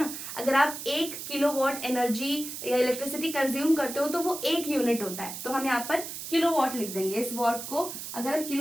अगर आप 1 किलो वॉट एनर्जी या इलेक्ट्रिसिटी कंज्यूम करते हो तो वो 1 यूनिट होता है, तो हम यहाँ पर किलो वॉट लिख देंगे। इस वॉट को अगर हम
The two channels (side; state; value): right; noise; hiss, 8 dB below the sound